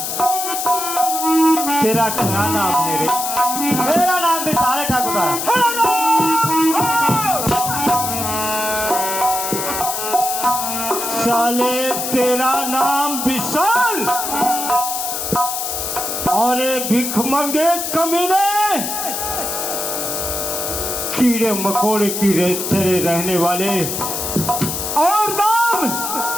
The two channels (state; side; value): noise; left; hiss, 3 dB below the sound